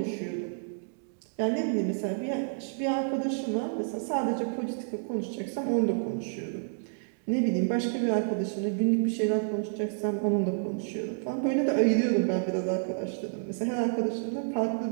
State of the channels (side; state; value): left; silent; digital silence